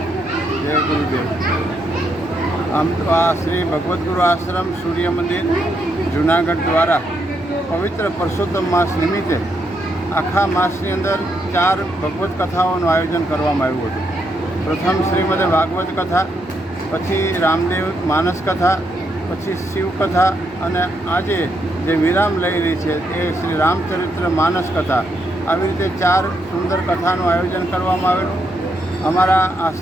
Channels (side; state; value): both; normal; correlation 0.78